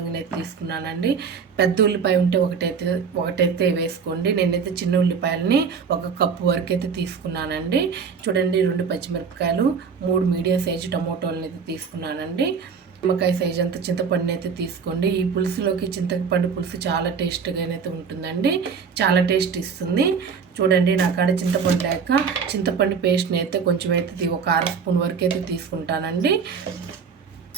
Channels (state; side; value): quieter; left; 6.0 dB